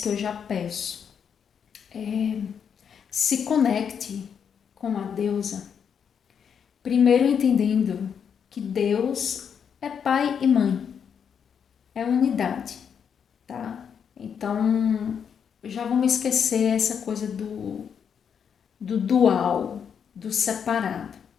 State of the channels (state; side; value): quieter; right; 7.4 dB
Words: que eu já peço. Se conecte com a deusa, primeiro entendendo que Deus é pai e mãe, é unidade, tá? Então, já vamos esquecer essa coisa do dual, do separado,